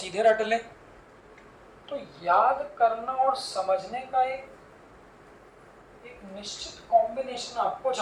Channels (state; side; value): identical; both; correlation 1.00